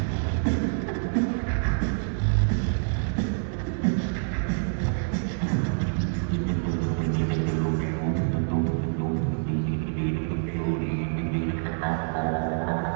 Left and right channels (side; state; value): left; silent; 60 dB below the other